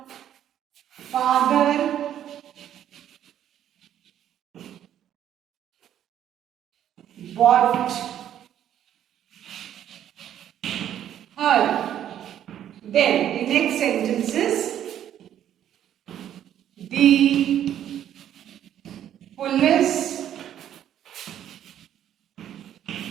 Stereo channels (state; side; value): quieter; left; 10.7 dB